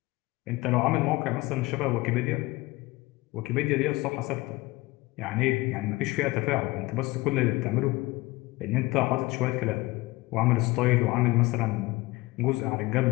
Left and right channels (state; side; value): quieter; right; 20.7 dB